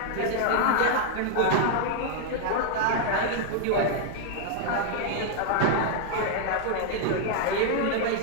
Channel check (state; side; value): different; both; correlation 0.00